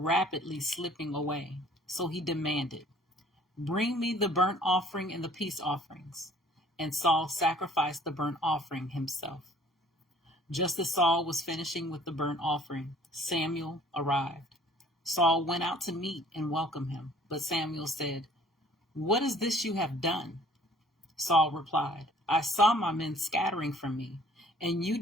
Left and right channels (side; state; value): both; normal; correlation 0.54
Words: slipping away, so he demanded, "Bring me the burnt offering and the peace offerings." And Saul sacrificed the burnt offering himself. Just as Saul was finishing with the burnt offering, Samuel arrived. Saul went out to meet and welcome him, but Samuel said, "What is this you have done?" Saul replied, "I saw my men scattering from me, and you